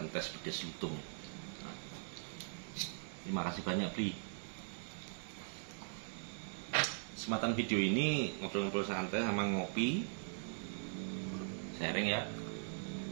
tes pedes lutung. Nah, terima kasih banyak Bli. Kesempatan video ini ngobrol-ngobrol santai sama ngopi, sharing ya.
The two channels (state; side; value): silent; left; digital silence